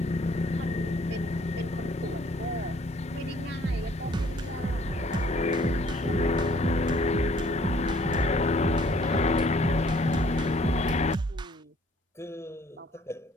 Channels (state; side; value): normal; both; correlation 0.60